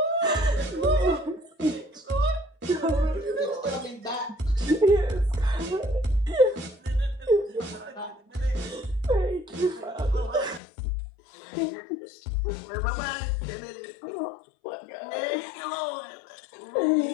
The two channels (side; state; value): right; drops out; at 10.6 s